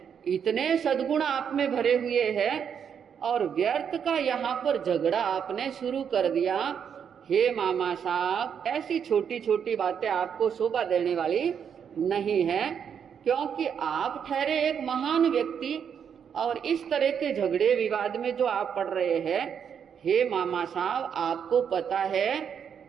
इतने सद्गुण आप में भरे हुए हैं, और व्यर्थ का यहाँ पर झगड़ा आपने शुरू कर दिया। हे मामा साहब, ऐसी छोटी छोटी बातें आपको शोभा देने वाली नहीं है, क्योंकि आप ठहरे एक महान व्यक्ति, और इस तरह के झगड़े विवाद में जो आप पड़ रहे हैं, हे मामा साहब, आपको पता है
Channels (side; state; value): left; quieter; 7.7 dB